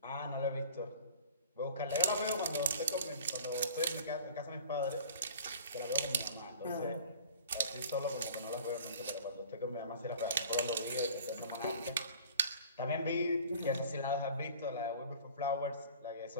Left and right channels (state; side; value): inverted; both; correlation -0.46